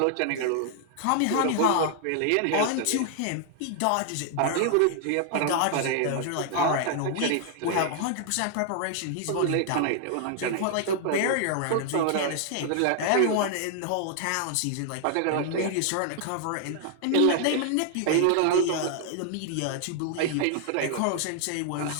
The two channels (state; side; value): different; both; correlation 0.00